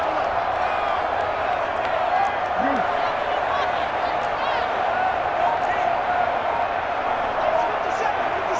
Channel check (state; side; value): identical; both; correlation 1.00